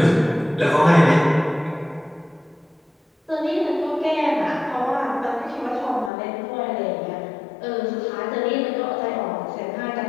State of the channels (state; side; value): drops out; right; at 6.1 s